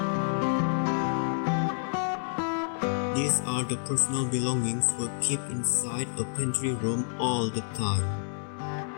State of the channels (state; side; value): silent; right; 59 dB below the other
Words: These are the personal belongings were kept inside a pantry room all the time.